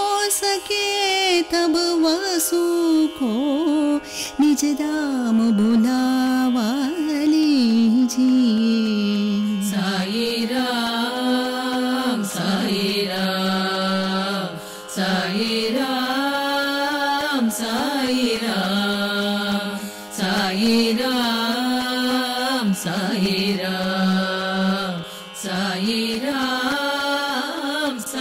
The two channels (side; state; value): both; identical; correlation 1.00